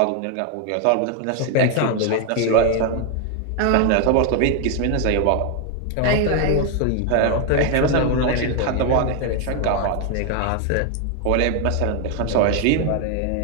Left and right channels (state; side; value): different; both; correlation 0.01